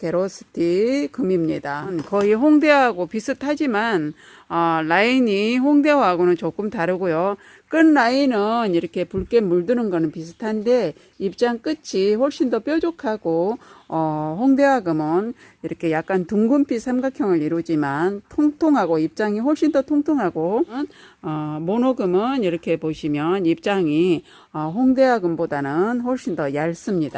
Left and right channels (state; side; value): identical; both; correlation 1.00